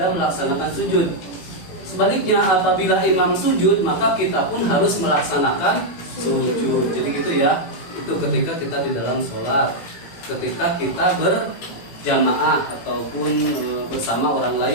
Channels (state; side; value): late; right; 17 ms